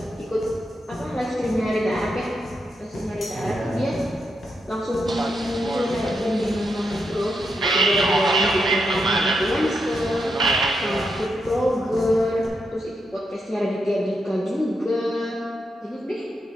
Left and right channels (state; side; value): normal; both; correlation 0.83